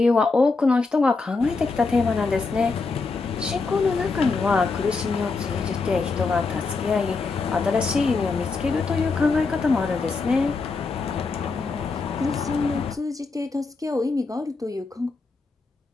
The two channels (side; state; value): right; quieter; 4.1 dB